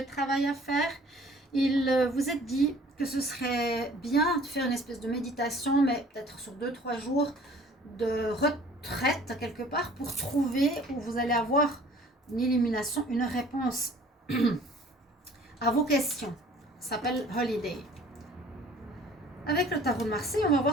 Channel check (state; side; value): normal; both; correlation 0.52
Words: travail à faire. Il vous est dit que ce serait bien de faire une espèce de méditation, mais peut-être sur 2-3 jours de retraite quelque part pour trouver où vous allez avoir une illumination, une réponse à vos questions. Ça s'appelle Holiday. Avec le tarot de Marseille, on va